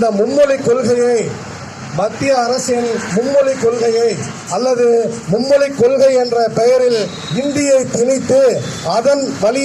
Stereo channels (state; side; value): identical; both; correlation 1.00